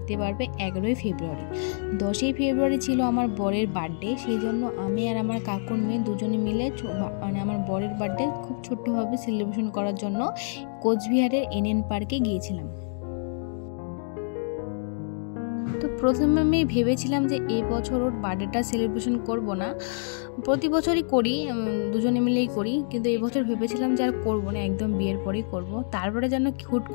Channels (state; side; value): silent; right; digital silence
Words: পারবে 11ই ফেব্রুয়ারি। 10ই ফেব্রুয়ারি ছিল আমার বরের বার্থডে, সেই জন্য আমি আর আমার কাকুর মেয়ে দুজনে মিলে মানে আমার বরের বার্থডে খুব ছোট্টভাবে সেলিব্রেশন করার জন্য কোচবিহারের এনএন পার্কে গিয়েছিলাম। তো প্রথমে আমি ভেবেছিলাম যে এই বছর ওর বার্থডেটা সেলিব্রেশন করব না, প্রতি বছরই করি, দুজনে মিলেই করি, কিন্তু এই বছর ভেবেছিলাম যে আর করবো না, একদম বিয়ের পরেই করব। তারপরে যেন হুট